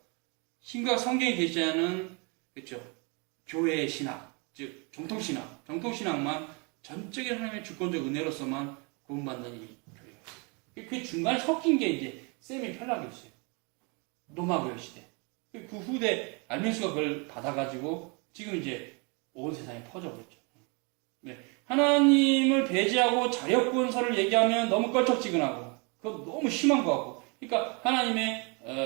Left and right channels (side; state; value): left; quieter; 32.2 dB